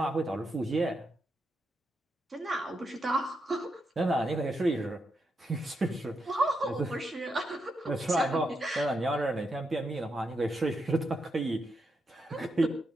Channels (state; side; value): normal; both; correlation 0.83